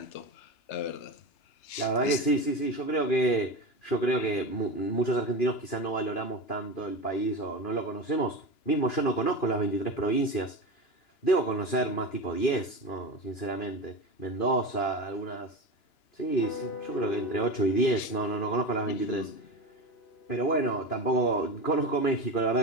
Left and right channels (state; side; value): late; right; 2.5 ms